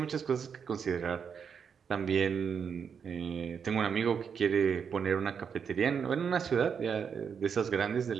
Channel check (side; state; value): left; quieter; 6.8 dB